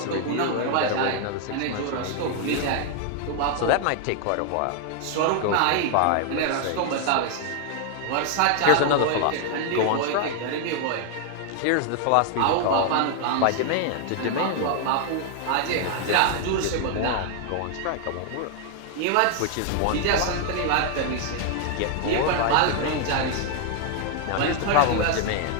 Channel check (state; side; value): different; both; correlation 0.00